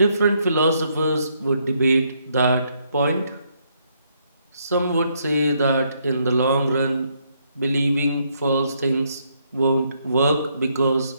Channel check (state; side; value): inverted; both; correlation -0.73